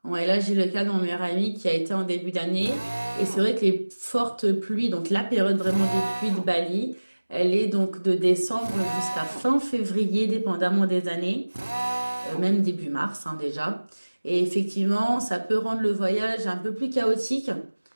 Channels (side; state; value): both; inverted; correlation -1.00